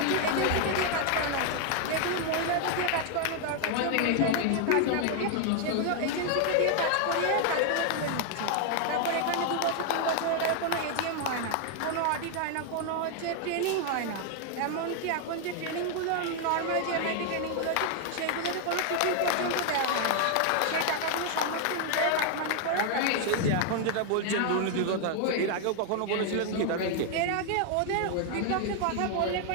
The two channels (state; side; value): different; both; correlation 0.00